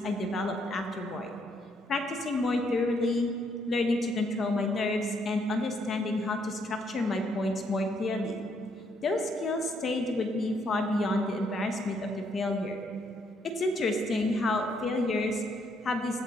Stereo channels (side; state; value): both; normal; correlation 0.72